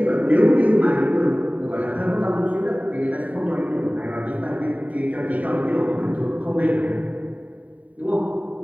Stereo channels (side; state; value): left; late; 0.070 ms